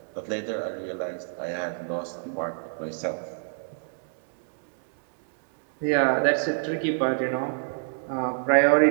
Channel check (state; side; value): silent; left; digital silence